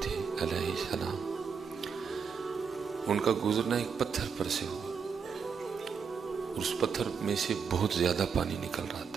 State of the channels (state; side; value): quieter; left; 6.2 dB